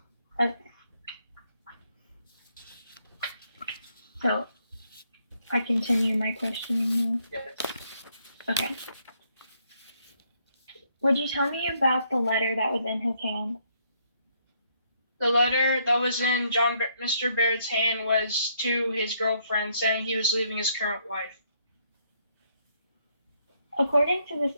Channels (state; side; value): inverted; both; correlation -0.71